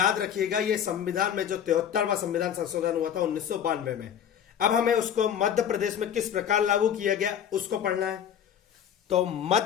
रखिएगा, यह संविधान में जो 73वां संविधान संशोधन हुआ था 1992 में, अब हमें उसको मध्य प्रदेश में किस प्रकार लागू किया गया उसको पढ़ना है। तो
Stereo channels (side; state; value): right; quieter; 9.1 dB